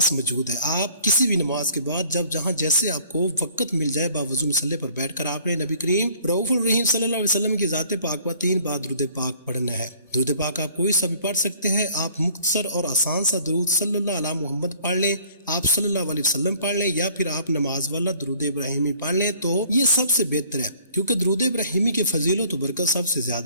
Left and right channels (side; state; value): both; inverted; correlation -0.55